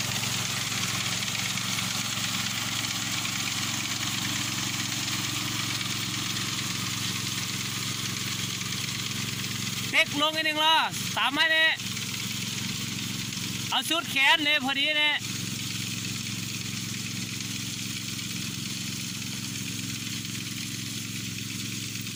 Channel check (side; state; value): both; identical; correlation 1.00